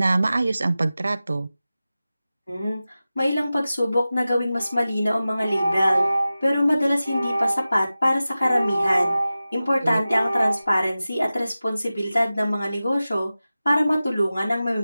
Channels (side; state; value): both; inverted; correlation -0.95